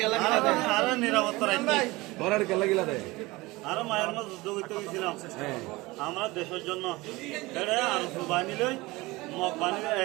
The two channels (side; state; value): left; quieter; 21.5 dB